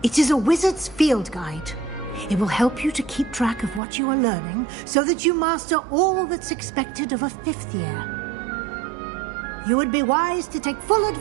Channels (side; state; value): left; drops out; at 3.8 s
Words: It is a wizard's field guide. It will help you to keep track of what you are learning so that you master all that's expected of a 5th year. You would be wise to take full